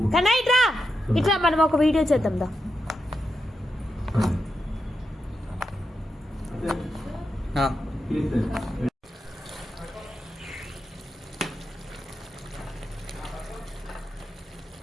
కన్నా ఇట్రా ఇట్లా మనం ఒక వీడియో చేద్దాం దా.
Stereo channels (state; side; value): normal; both; correlation 0.86